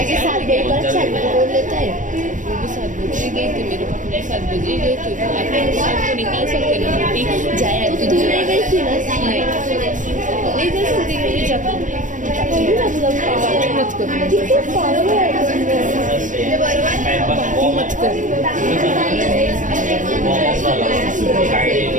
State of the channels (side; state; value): left; late; 0.37 ms